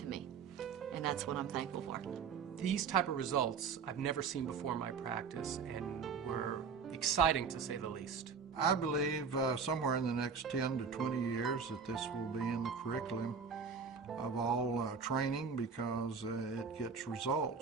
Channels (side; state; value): left; quieter; 5.7 dB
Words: me, and that's what I'm thankful for. These type of results I've never seen before in my practice and were exciting to say the least. I believe somewhere in the next 10 to 20 years that this will be in the curriculum of all training because it gets